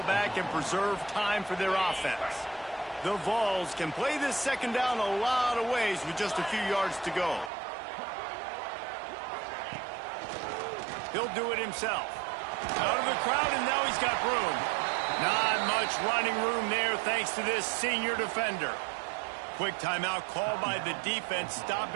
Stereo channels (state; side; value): drops out; left; at 7.5 s